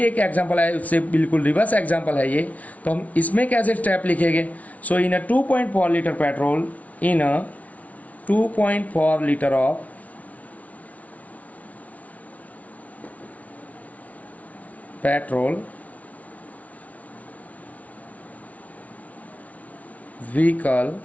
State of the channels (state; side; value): late; right; 0.069 ms